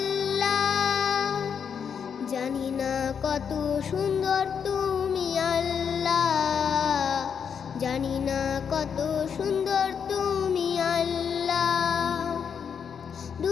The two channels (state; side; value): quieter; right; 7.1 dB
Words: জানি না কত সুন্দর তুমি আল্লাহ, জানি না কত সুন্দর তুমি আল্লাহ।